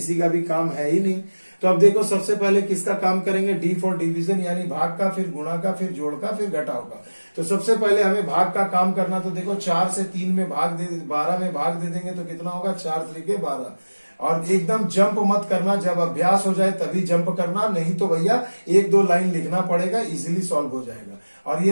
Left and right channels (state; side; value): inverted; both; correlation -1.00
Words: का भी काम है ही नहीं। तो अब देखो सबसे पहले किसका काम करेंगे, डी फॉर डिवीजन यानी भाग का, फिर गुणा का, फिर जोड़ का, फिर घटाव का। तो सबसे पहले हमें भाग का काम करना, तो देखो 4 से 3 में भाग दे, 12 में भाग दे देंगे तो कितना होगा, 4 3 12। और एकदम जंप मत करना, जब अभ्यास हो जाए तभी जंप करना, नहीं तो भैया 1-2 लाइन लिखना पड़ेगा, इजीली सॉल्व हो जाएगा। और